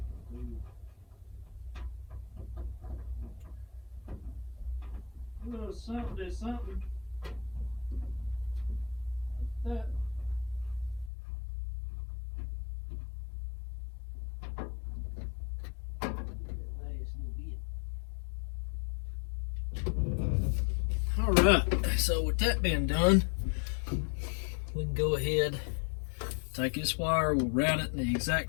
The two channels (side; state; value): right; drops out; at 11.1 s